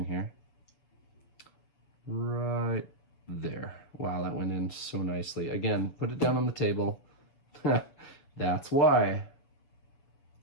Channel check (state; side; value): late; right; 7.0 ms